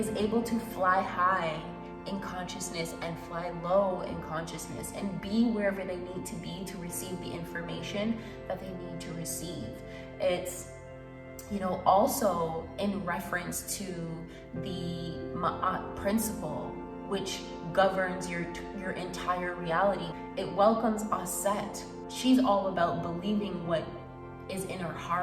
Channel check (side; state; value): both; identical; correlation 1.00